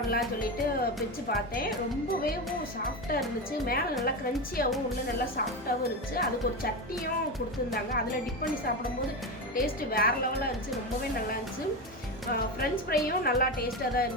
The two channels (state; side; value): normal; both; correlation 0.18